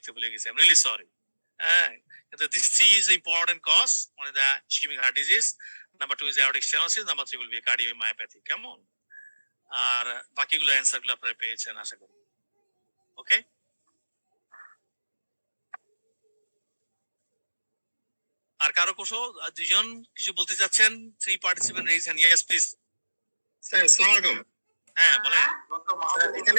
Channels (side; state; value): both; inverted; correlation -1.00